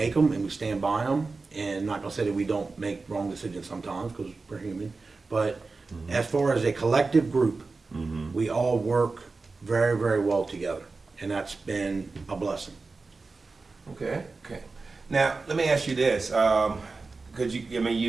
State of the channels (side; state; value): left; quieter; 4.0 dB